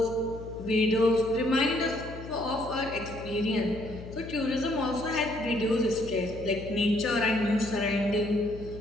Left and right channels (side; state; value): left; noise; hum, 13 dB below the sound